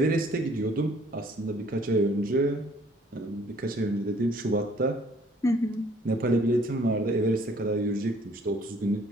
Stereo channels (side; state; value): both; normal; correlation 0.58